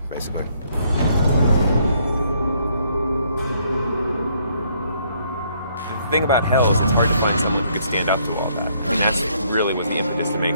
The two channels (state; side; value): inverted; both; correlation -0.68